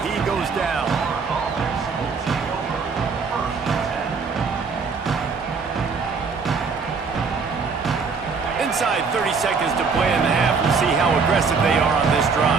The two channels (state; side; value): quieter; left; 5.1 dB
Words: He goes down. Inside 30 seconds to play in the half. We'll see how aggressive they are on this